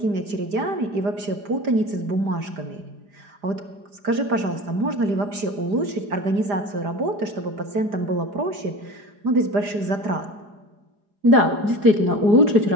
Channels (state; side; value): late; left; 5.0 ms